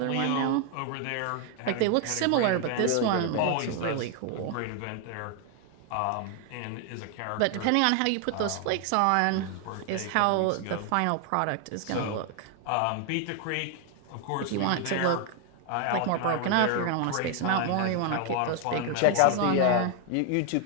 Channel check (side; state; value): both; different; correlation 0.00